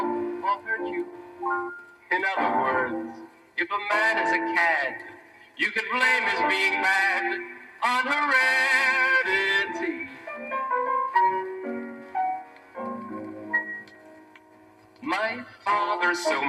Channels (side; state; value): both; identical; correlation 1.00